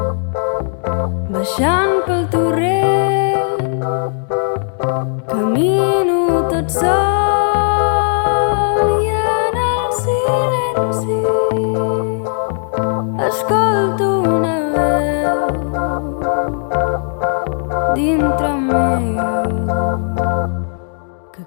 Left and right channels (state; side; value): silent; right; 68 dB below the other